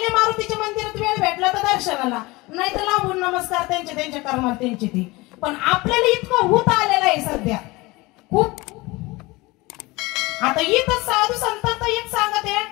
मारुतीच्या मंदिरात वेळ भेटला तर दर्शनाला, नाही तर लांबून नमस्कार त्यांच्या कर्मात त्यांचे ते. पण आपल्याला इतकं होत आलेलं आहे सध्या खूप. आता इथं साधू संतांचं एक सांगत आहे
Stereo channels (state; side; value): quieter; right; 22.4 dB